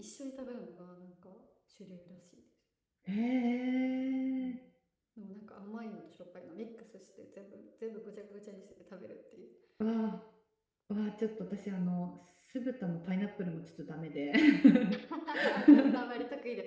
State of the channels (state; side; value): identical; both; correlation 1.00